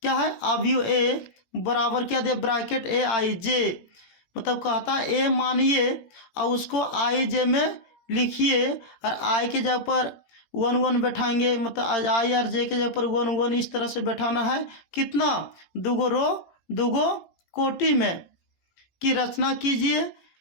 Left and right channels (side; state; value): right; late; 17 ms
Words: क्या है, अवयव ए बराबर क्या दे, ब्रैकेट ए आई जे, मतलब कहता है ए मानिए और उसको आई जे में लिखिए और आई के जगह पर 1 1 बैठाएंगे, मतलब आई और जे के जगह पर 1 1 इस तरह से बैठाना है। कितना? दुगो रो दुगो कोटि में की रचना कीजिए